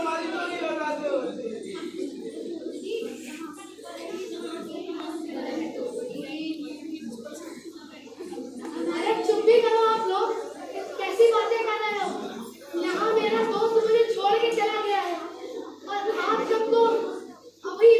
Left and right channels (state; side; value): identical; both; correlation 1.00